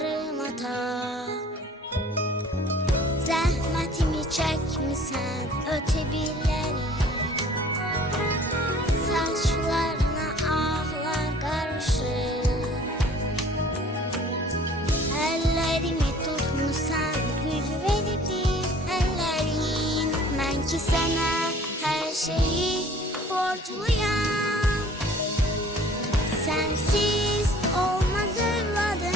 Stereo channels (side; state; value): both; normal; correlation 0.51